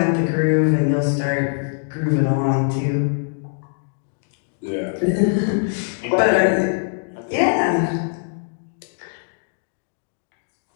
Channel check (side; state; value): right; silent; digital silence